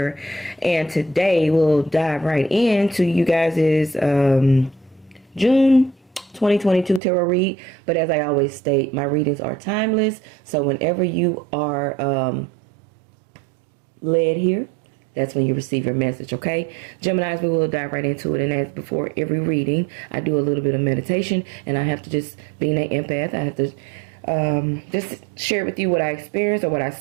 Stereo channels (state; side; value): drops out; left; at 7.0 s